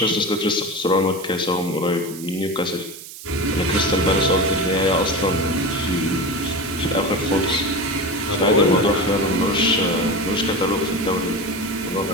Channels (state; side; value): noise; right; hiss, 14 dB below the sound